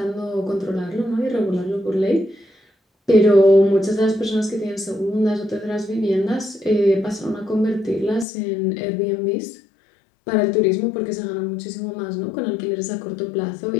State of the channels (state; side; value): drops out; right; at 8.2 s